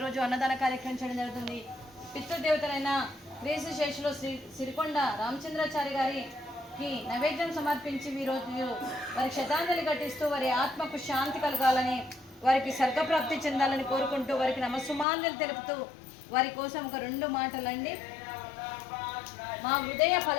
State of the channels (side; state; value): right; drops out; at 15.1 s